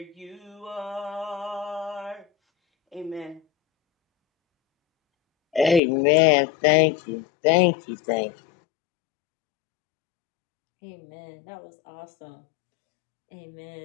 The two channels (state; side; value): drops out; right; at 5.8 s